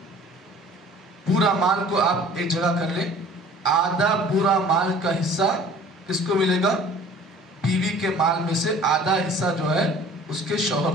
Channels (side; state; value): both; normal; correlation 0.48